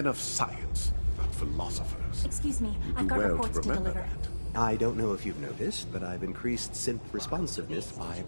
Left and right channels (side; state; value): both; inverted; correlation -1.00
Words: of science, not philosophers. Excuse me, You I've do got well reports to remember deliver. that. I don't know if you've noticed, but I've increased synth responsiveness by